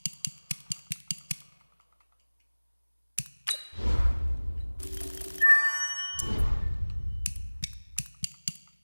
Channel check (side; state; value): both; inverted; correlation -1.00